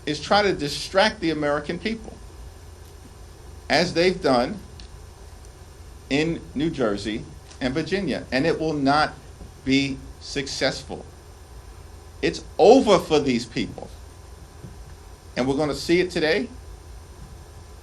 is try to distract the American people, as they've done in New Jersey and Virginia, and it will not be successful. It's over for these people. And we're going to see it today,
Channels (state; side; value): identical; both; correlation 1.00